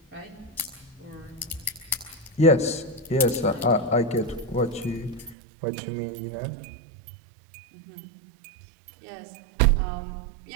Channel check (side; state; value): left; drops out; at 5.4 s